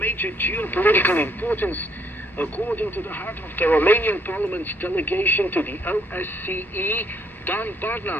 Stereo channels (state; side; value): normal; both; correlation 0.68